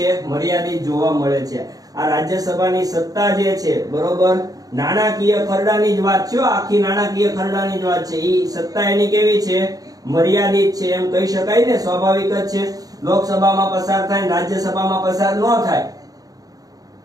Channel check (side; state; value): left; late; 0.18 ms